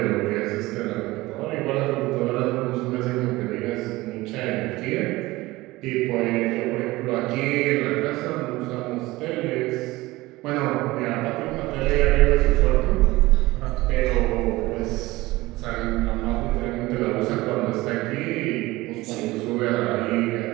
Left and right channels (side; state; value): left; quieter; 19.7 dB